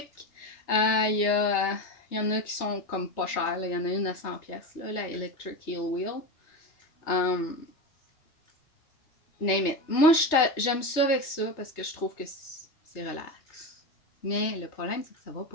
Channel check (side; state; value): right; late; 3.3 ms